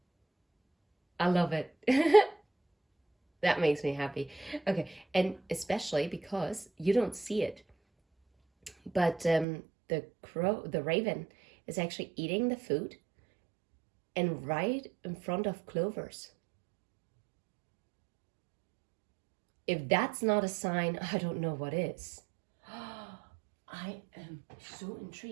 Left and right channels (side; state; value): left; drops out; at 9.5 s